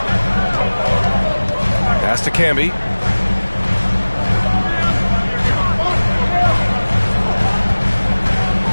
Pass to Camby.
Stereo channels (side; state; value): both; inverted; correlation -1.00